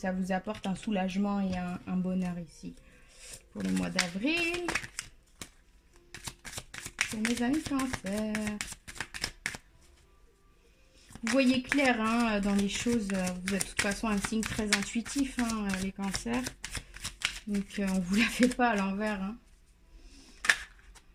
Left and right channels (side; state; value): both; identical; correlation 1.00